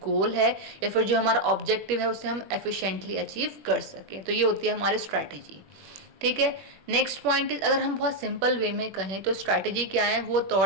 गोल है या फिर जो हमारा ऑब्जेक्टिव है उसे हम एफिशिएंटली अचीव कर सकें. तो ये होती है हमारी स्ट्रैटेजी. ठीक है. नेक्स्ट पॉइंट इज, अगर हम बहुत सिंपल वे में कहें तो स्ट्रैटेजी क्या है? वो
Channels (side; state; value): left; late; 21 ms